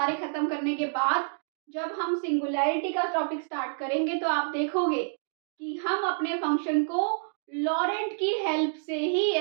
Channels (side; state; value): left; silent; digital silence